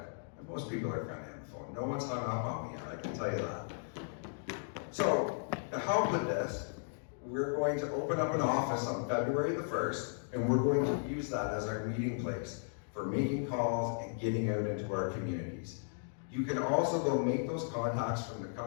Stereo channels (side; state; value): right; silent; digital silence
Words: And most people are friendly on the phone. No one's hung up on me yet, I can tell you that. So, to help with this, we're going to open up an office on February the 1st, and we're going to use that as our meeting place for making calls and getting out into our communities. You can also go make those contacts from the